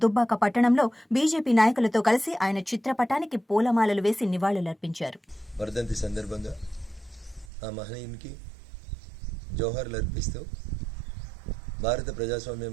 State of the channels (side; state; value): left; drops out; at 7.5 s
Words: దుబ్బాక పట్టణంలో బీజేపీ నాయకులతో కలిసి ఆయన చిత్రపటానికి పూలమాలలు వేసి నివాళులర్పించారు. వర్ధంతి సందర్భంగా ఆ మహనీయునికి జోహార్లు అర్పిస్తూ భారత ప్రజాస్వామ్యం